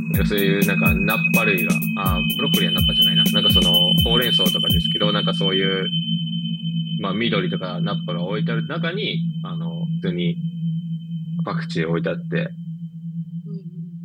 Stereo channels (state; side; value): identical; both; correlation 1.00